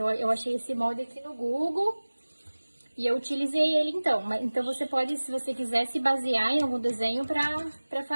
eu achei esse molde aqui no Google e eu utilizei ele então. Então você pode, se você quiser, se basear em algum desenho pra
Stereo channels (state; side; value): inverted; both; correlation -1.00